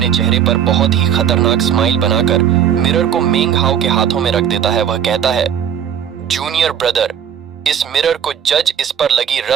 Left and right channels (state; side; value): quieter; left; 8.9 dB